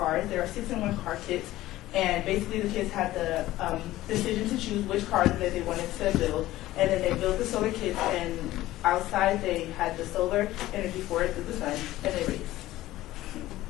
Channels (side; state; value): right; quieter; 16.0 dB